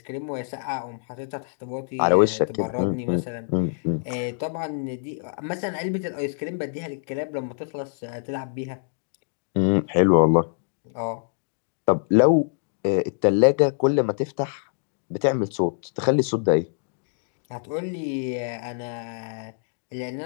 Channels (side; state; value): right; silent; digital silence